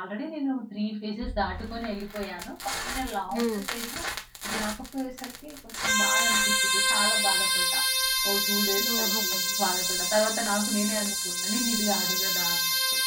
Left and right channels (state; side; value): identical; both; correlation 1.00